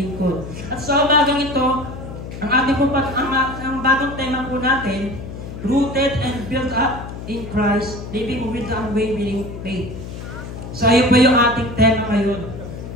At sa umagang ito, ang ating ang bagong tema po natin, rooted and built up in Christ, living with the unwavering faith. So ayun po yung ating tema ngayon,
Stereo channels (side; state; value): left; noise; hum, 10 dB below the sound